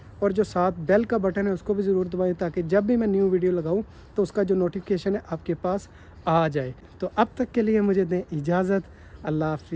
और जो साथ बेल का बटन है उसको भी ज़रूर दबाएं, ताकि जब भी मैं न्यू वीडियो लगाऊं तो उसका जो नोटिफिकेशन है आपके पास आ जाए। तो अब तक के लिए मुझे दें इजाज़त। अल्लाह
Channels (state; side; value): identical; both; correlation 1.00